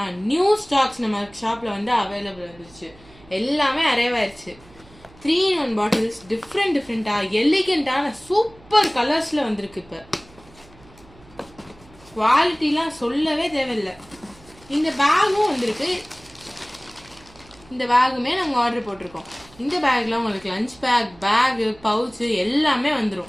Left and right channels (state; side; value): noise; right; hum, 25 dB below the sound